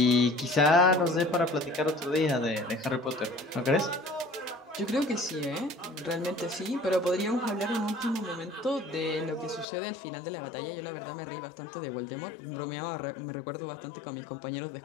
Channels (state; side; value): drops out; right; at 9.7 s